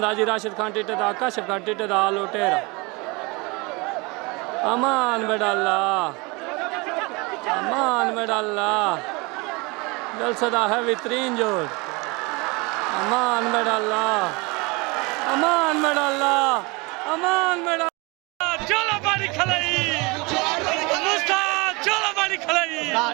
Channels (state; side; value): quieter; left; 26.9 dB